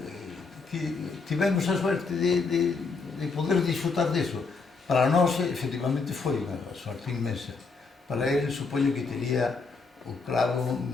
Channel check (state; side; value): quieter; right; 4.4 dB